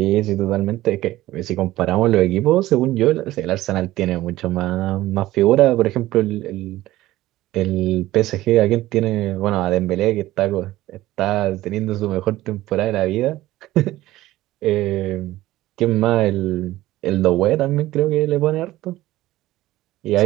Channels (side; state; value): left; quieter; 16.2 dB